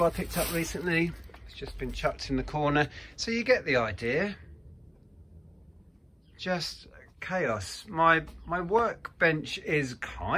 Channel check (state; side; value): identical; both; correlation 1.00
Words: I picked up recently. It's just been chucked in the corner, so you get the idea. Just chaos. My workbench is